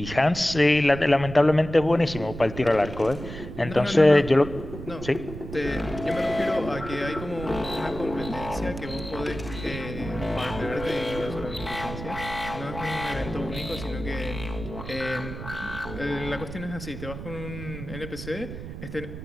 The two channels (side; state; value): right; noise; rumble, 10 dB below the sound